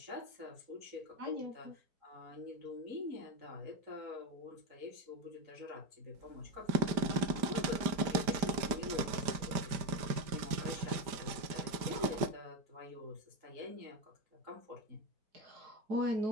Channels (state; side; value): late; left; 5.0 ms